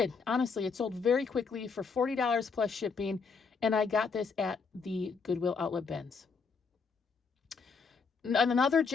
Honestly, it sold very quickly for $40 plus shipping, and I got this at the Goodwill Outlet bins. And another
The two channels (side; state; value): right; quieter; 5.1 dB